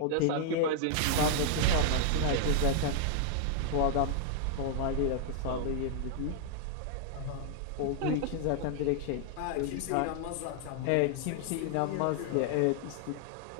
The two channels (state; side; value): different; both; correlation -0.01